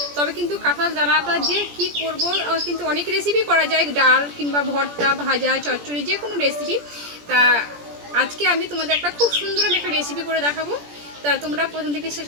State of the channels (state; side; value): late; left; 17 ms